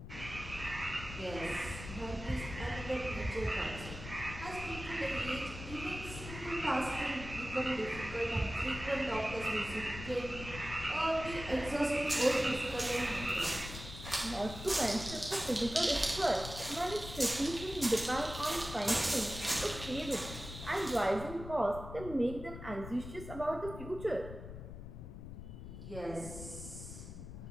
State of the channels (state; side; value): noise; left; rumble, 10 dB below the sound